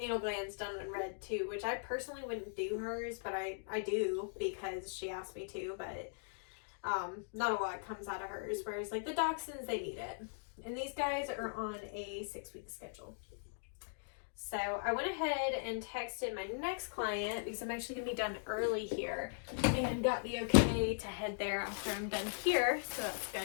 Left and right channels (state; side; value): silent; right; digital silence